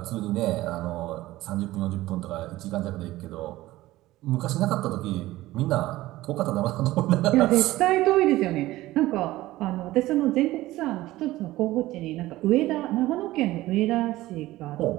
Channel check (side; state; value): left; quieter; 17.0 dB